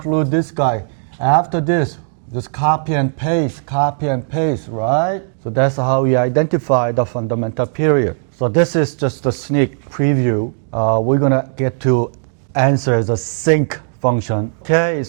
this guy. After this, just copy and paste, right? So that's how we identify the fundamental period. So this is just a sneak preview. We're going to get to answer the sinc function. Okay,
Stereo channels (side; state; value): left; silent; digital silence